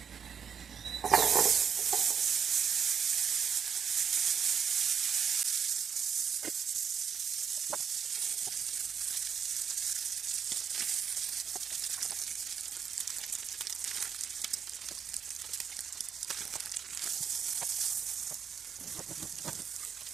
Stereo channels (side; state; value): left; quieter; 7.3 dB